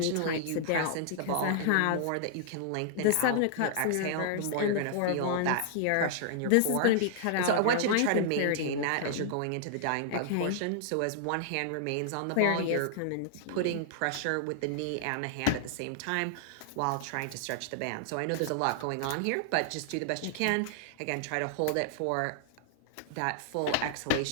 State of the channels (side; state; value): both; different; correlation -0.01